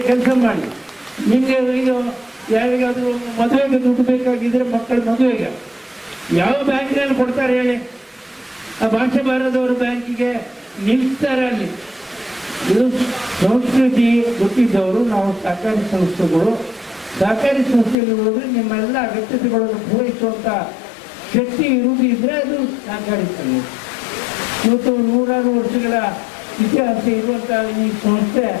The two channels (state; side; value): drops out; right; at 17.9 s